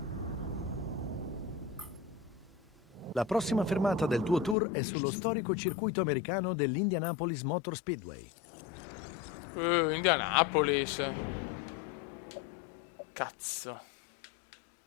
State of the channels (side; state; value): right; drops out; at 4.5 s